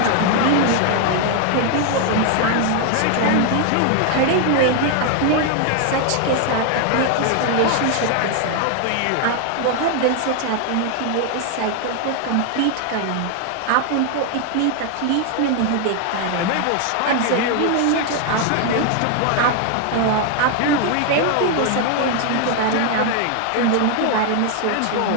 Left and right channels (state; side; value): different; both; correlation 0.00